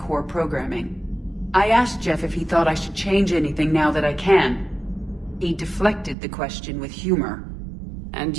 programming. I asked Jeff if he thought I should change anything now that I can. He deflected the question with humor. And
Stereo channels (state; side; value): drops out; left; at 6.2 s